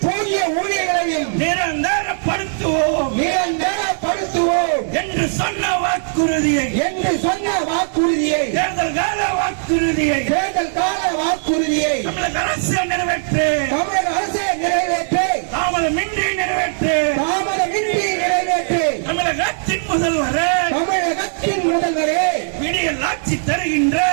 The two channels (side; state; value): left; silent; digital silence